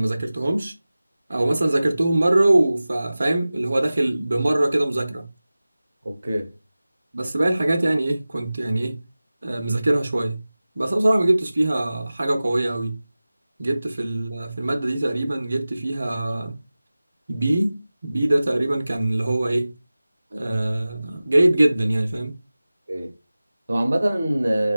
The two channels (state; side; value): inverted; both; correlation -0.97